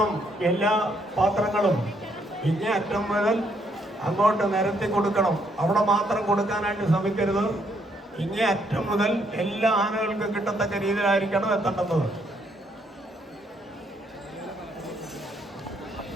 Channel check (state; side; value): normal; both; correlation 0.72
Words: എല്ലാ പാത്രങ്ങളും. ഇങ്ങേ അറ്റം മുതൽ അങ്ങോട്ട് നിരത്തി കൊടുക്കണം. അവിടെ മാത്രം കൊടുക്കാനായിട്ട് ശ്രമിക്കരുത്. ഇങ്ങേ അറ്റം മുതൽ എല്ലാ ആനകൾക്കും കിട്ടത്തക്ക രീതിയിലായിരിക്കണം എത്തേണ്ടത്.